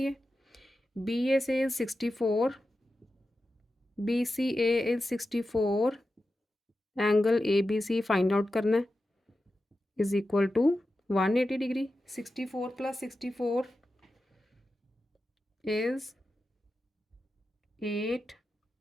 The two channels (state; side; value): normal; both; correlation 0.91